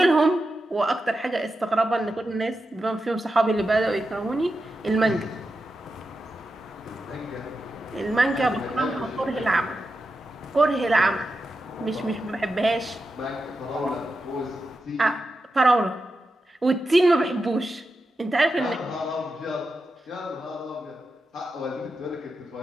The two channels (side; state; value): both; normal; correlation 0.90